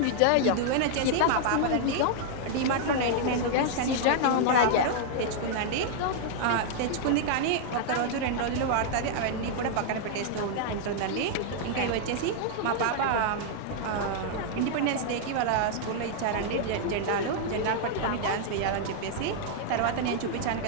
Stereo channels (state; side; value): different; both; correlation -0.01